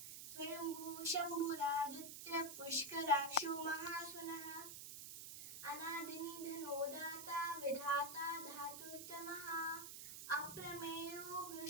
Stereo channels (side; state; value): right; noise; hiss, 9 dB below the sound